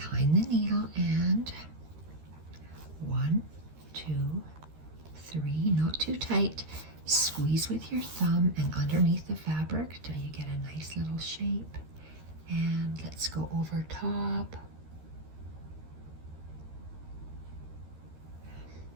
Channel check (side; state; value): left; late; 13 ms